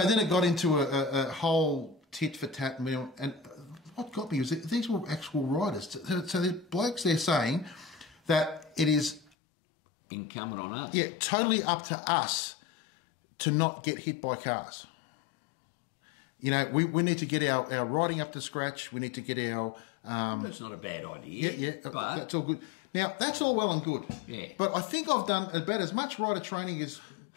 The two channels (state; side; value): drops out; right; at 9.3 s